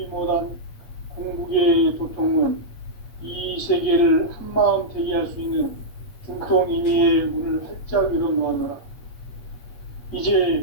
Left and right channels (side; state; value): right; late; 8.7 ms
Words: 못한 궁극의 도통은 이 세계를 한마음 되게 할 수 있는 중통인의의 문을 활짝 열어놓았노라.